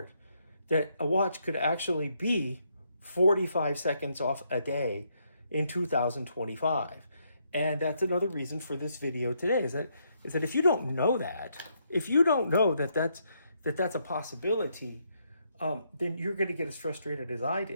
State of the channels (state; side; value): inverted; both; correlation -0.75